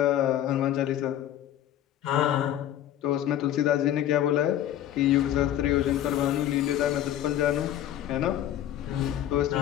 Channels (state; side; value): quieter; right; 11.8 dB